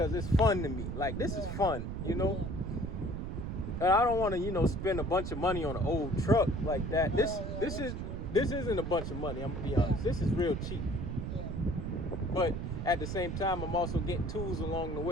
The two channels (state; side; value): noise; right; rumble, 4 dB below the sound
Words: it's fun to me. Like this is fun, you know. And I don't want to, you know, spend a bunch of money on an old truck like that. This isn't a bunch of money. I'm gonna be honest. This is real cheap. Yeah. But at the same time, I'm also getting tools along the